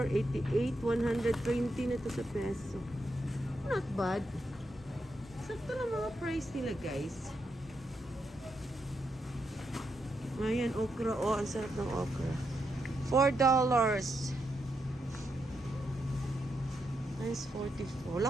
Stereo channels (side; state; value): both; normal; correlation 0.83